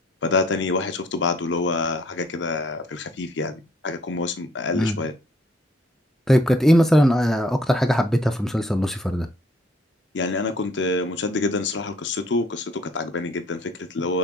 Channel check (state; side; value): normal; both; correlation 0.62